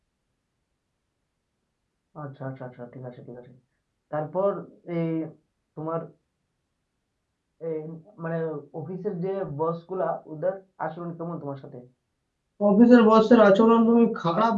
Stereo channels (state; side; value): identical; both; correlation 1.00